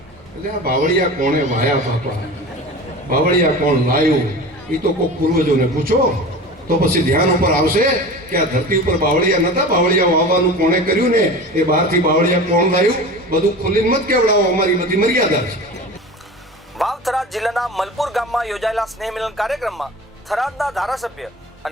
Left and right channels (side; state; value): both; normal; correlation 0.34